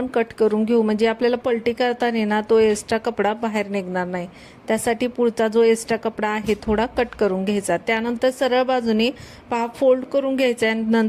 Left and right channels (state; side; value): identical; both; correlation 1.00